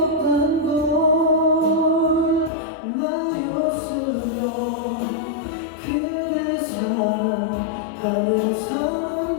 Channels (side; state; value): right; drops out; at 2.5 s